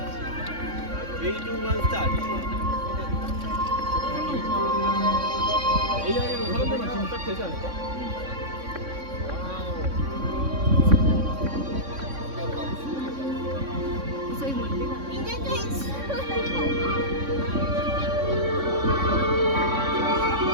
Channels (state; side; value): late; left; 3.6 ms